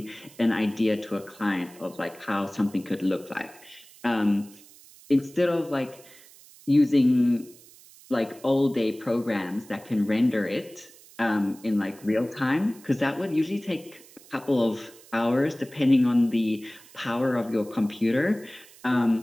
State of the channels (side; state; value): right; noise; hiss, 23 dB below the sound